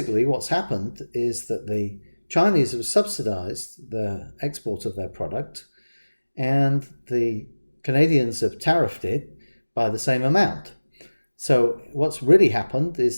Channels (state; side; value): inverted; both; correlation -1.00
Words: what's happened is that the Chinese have subsidized the export of their product, and the Canadians have tariffed it by the same amount. So what's really happened